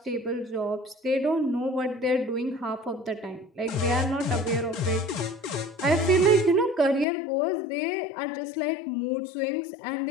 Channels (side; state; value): right; drops out; at 7.1 s